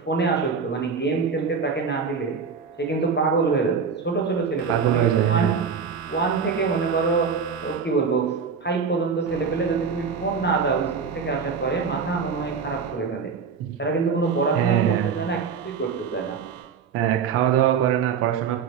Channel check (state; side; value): quieter; left; 5.9 dB